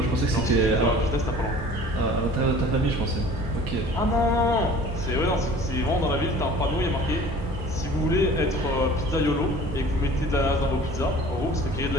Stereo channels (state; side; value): normal; both; correlation 0.46